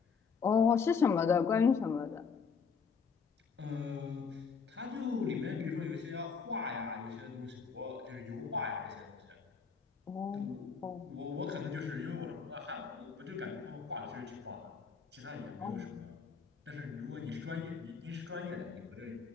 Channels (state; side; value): quieter; right; 5.8 dB